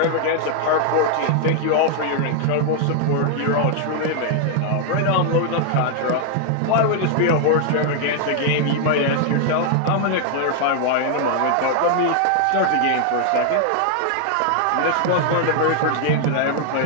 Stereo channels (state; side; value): different; both; correlation 0.00